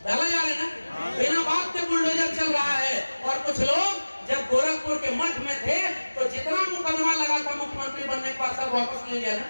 है ना, बिना बात के बुलडोजर चल रहा है। और कुछ लोग जब गोरखपुर के मठ में थे तो जितना मुकदमा लगा था मुख्यमंत्री बनने के बाद सब वापस ले लिया ना,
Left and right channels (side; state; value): both; inverted; correlation -1.00